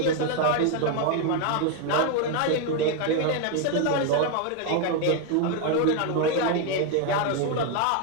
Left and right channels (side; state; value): both; different; correlation 0.01